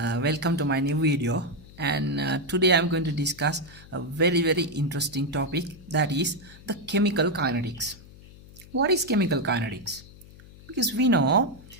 welcome to my new video, and today I'm going to discuss a very interesting topic, that is the chemical kinetics. What is chemical kinetics? Because we know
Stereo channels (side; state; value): left; noise; hum, 21 dB below the sound